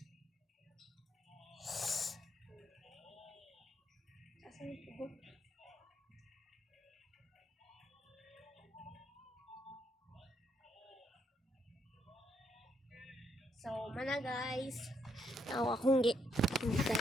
Asan yung tubo? So, mana guys. Akong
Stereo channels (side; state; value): both; normal; correlation 0.75